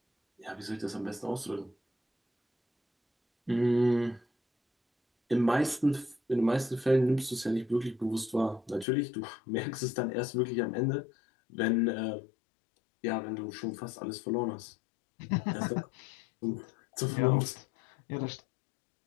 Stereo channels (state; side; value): drops out; right; at 8.8 s